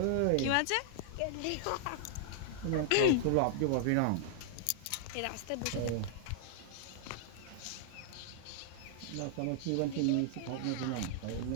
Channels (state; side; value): different; both; correlation -0.01